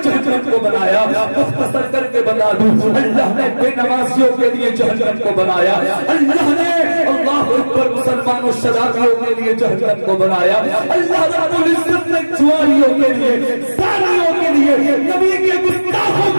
جہنم کو بنایا۔ مختصر کر کے بتا دوں اللہ نے بے نمازیوں کے لیے جہنم کو بنایا، اللہ نے اللہ اکبر مسلمانوں شرابیوں کے لیے جہنم کو بنایا، اللہ رب العزت نے جواریوں کے لیے، زانیوں کے لیے، نبی کے گستاخوں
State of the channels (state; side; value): inverted; both; correlation -1.00